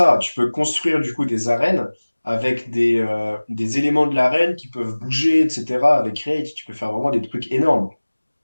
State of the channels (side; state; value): both; inverted; correlation -1.00